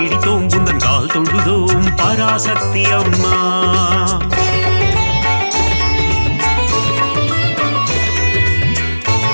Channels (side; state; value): both; inverted; correlation -1.00